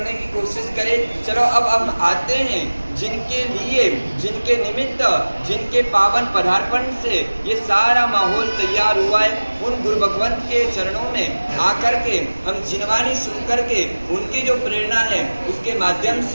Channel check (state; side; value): inverted; both; correlation -1.00